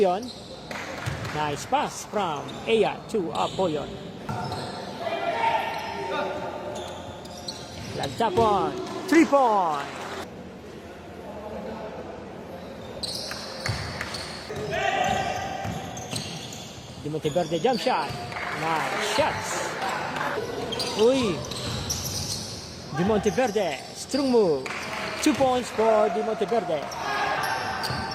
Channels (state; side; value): identical; both; correlation 1.00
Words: Nice pass from Aya to Apoyon. Lagtapon, 3 points. De Monteverde jump shot. Nice shots. Uy. De Monteverde, strong move. 2 points for De Monteverde.